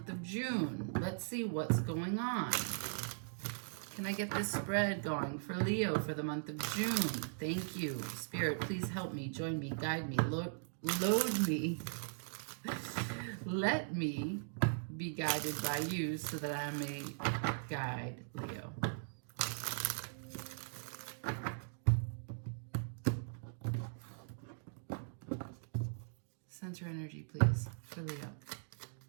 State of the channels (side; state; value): left; silent; digital silence